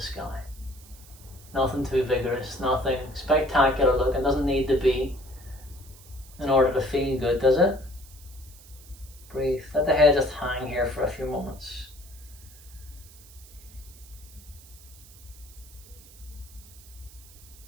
Nothing too vigorous, nothing spectacular looking. Doesn't need to be in order to feel good, does it? Breathe. Let the head just hang here for a few moments.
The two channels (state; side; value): noise; right; hiss, 21 dB below the sound